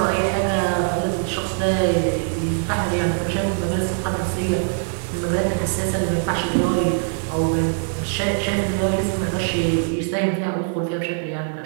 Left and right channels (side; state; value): left; silent; 61 dB below the other